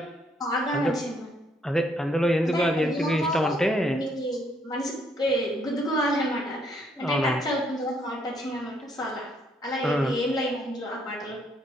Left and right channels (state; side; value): normal; both; correlation 0.70